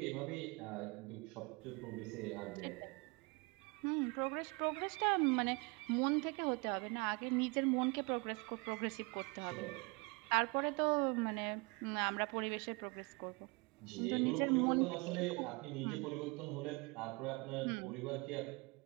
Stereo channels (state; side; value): quieter; left; 28.3 dB